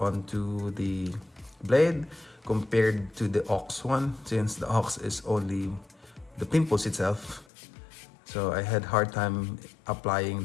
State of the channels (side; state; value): right; drops out; at 7.5 s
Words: the blade compared to the ox one, since the ox is only the pimples itself. So I had hard time applying